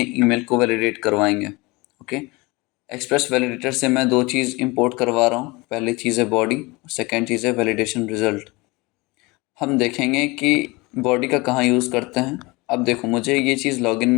ईमेल को वैलिडेट करवाएंगे। ओके, एक्सप्रेस वैलिडेटर से मैं दो चीज़ इंपोर्ट करवा रहा हूँ। पहली चीज़ है बॉडी, सेकेंड चीज़ है वैलिडेशन रिजल्ट। हम देखेंगे कि बॉडी का कहाँ यूज़ करते हैं। अब देखो, मुझे ये चीज़ लॉगिन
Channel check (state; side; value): quieter; right; 24.3 dB